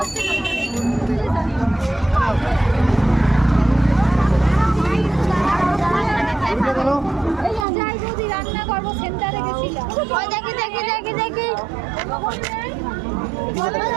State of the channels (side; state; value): left; drops out; at 7.7 s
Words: রান্না করবো সেন্টারে গেছিলাম দেখি দেখি দেখি দেখি